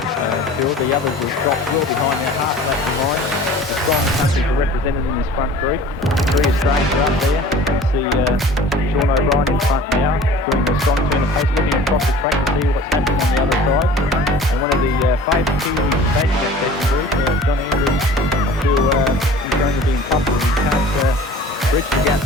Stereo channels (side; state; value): both; normal; correlation 0.44